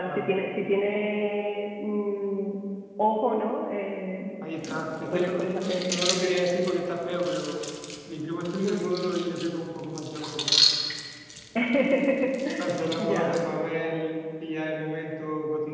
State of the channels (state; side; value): identical; both; correlation 1.00